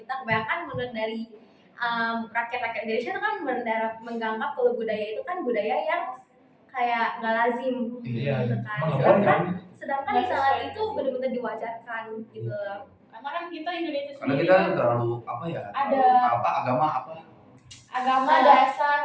kebanyakan menurut dari rakyat-rakyat Indonesia itu kan menganggap kalau budaya itu kan budaya yang kayak nggak lazim Iya, gitu kan. emang nggak Sedangkan, boleh kan? sedangkan di sana itu benar-benar diwajarkan gitu. Karena kan kita Indonesia Karena sendiri kita kan terlalu apa ya? Ada- apa agama apa? agama dasar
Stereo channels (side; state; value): both; identical; correlation 1.00